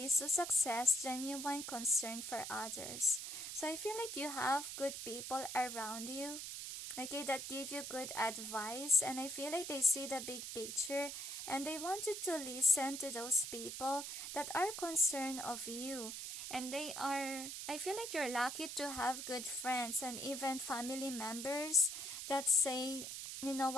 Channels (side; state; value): right; noise; hiss, 6 dB below the sound